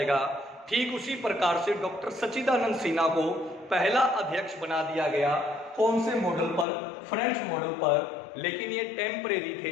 ठीक उसी प्रकार से डॉक्टर सच्चिदानंद सिन्हा को पहला अध्यक्ष बना दिया गया। कौन से मॉडल पर? फ्रेंच मॉडल पर। लेकिन ये टेम्परेरी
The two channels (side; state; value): right; drops out; at 6.7 s